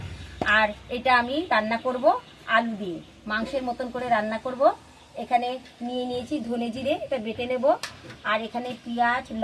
আর এটা আমি রান্না করব আলু দিয়ে, মাংসের মতন করে রান্না করব। এখানে নিয়ে নিয়েছি ধনে জিরে, এটা বেটে নেব। আর এখানে পেঁয়াজ,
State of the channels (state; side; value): identical; both; correlation 1.00